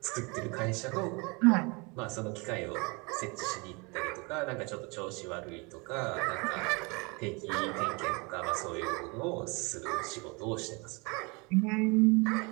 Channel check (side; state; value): left; quieter; 28.9 dB